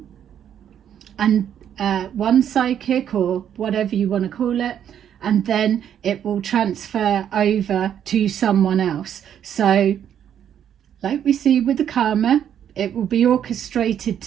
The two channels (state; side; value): quieter; left; 9.4 dB